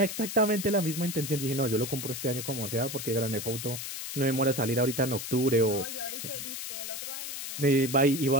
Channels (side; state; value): left; noise; hiss, 6 dB below the sound